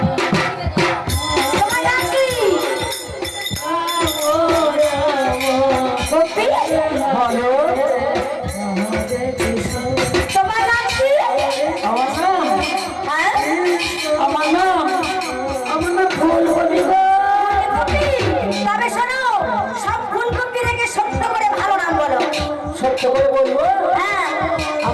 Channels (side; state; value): both; identical; correlation 1.00